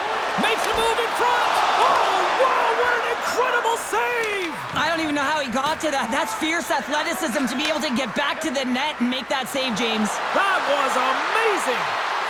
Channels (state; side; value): identical; both; correlation 1.00